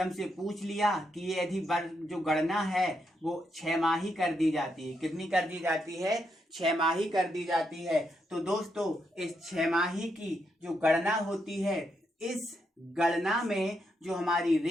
पूछ लिया कि ये यदि जो गणना है वो 6माही कर दी जाती है, कितनी कर दी जाती है? 6माही कर दी जाती है। तो दोस्तों इस 6माही की जो गणना होती है, इस गणना में जो हमारी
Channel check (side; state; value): both; normal; correlation 0.81